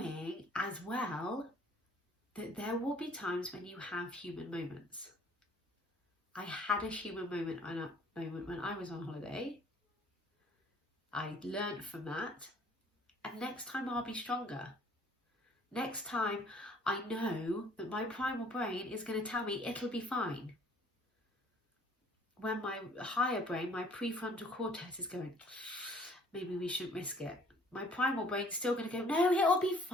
as well that there will be times when you have human moments. I had a human moment when I was on holiday. I learned from that. And next time I'll be stronger. Next time I know that my primal brain is going to tell me it'll be fine. When my higher brain, my prefrontal cortex is going, maybe we shouldn't risk it. My primal brain's still going to go, no, it'll be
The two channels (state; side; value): normal; both; correlation 0.57